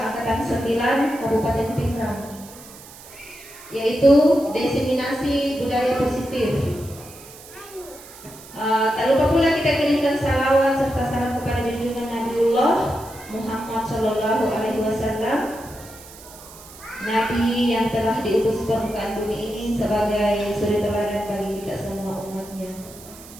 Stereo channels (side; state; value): right; noise; hiss, 18 dB below the sound